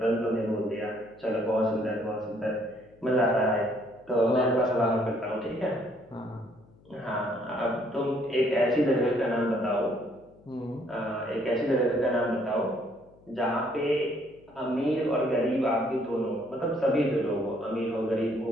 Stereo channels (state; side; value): noise; left; hum, 28 dB below the sound